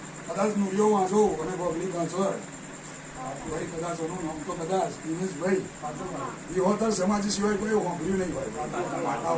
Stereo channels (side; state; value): both; identical; correlation 1.00